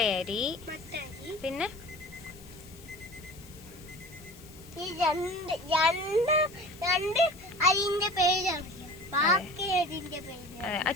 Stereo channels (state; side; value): noise; left; hiss, 21 dB below the sound